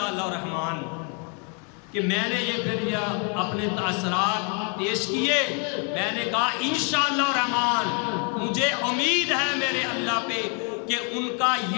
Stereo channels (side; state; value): right; quieter; 37.7 dB